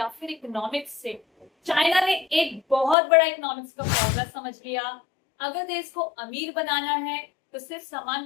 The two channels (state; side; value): drops out; right; at 3.0 s